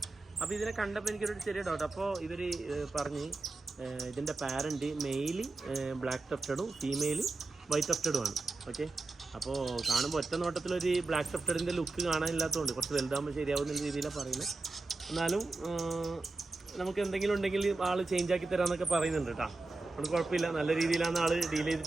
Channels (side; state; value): left; quieter; 3.4 dB